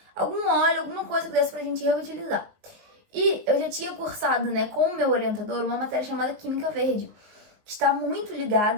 óleo, alguma coisa que desse pra gente reutilizar. E eu já tinha cursado, né, com o meu orientador, uma matéria chamada Química Verde, que está muito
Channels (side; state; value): left; late; 19 ms